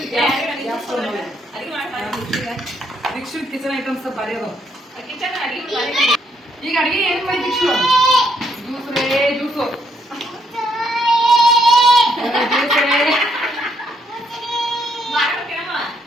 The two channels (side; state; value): both; normal; correlation 0.73